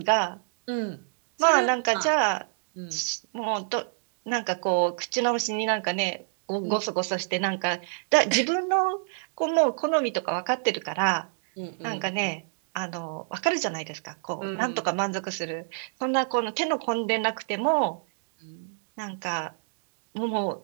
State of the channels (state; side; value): silent; left; 60 dB below the other